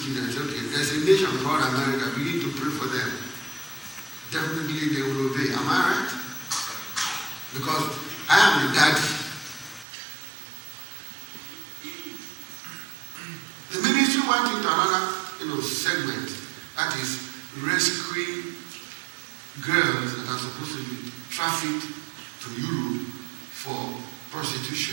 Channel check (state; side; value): drops out; left; at 9.9 s